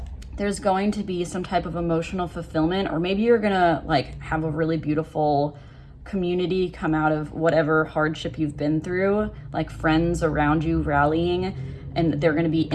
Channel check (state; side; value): identical; both; correlation 1.00